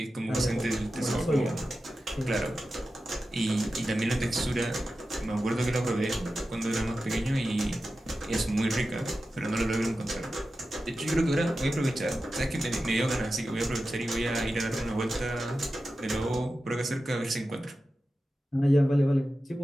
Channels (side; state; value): both; normal; correlation 0.93